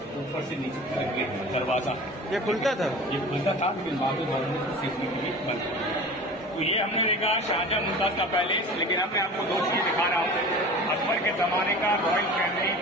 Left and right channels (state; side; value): normal; both; correlation 0.37